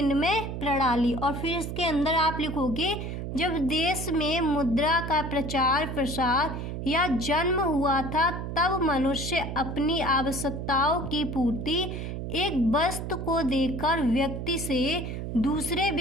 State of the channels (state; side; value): noise; right; hum, 5 dB below the sound